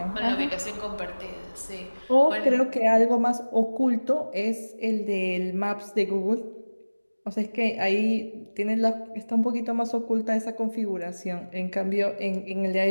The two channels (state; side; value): inverted; both; correlation -1.00